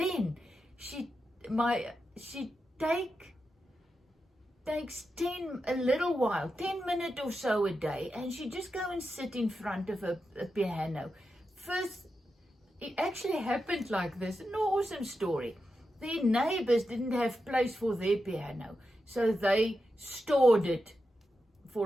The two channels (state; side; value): normal; both; correlation 0.88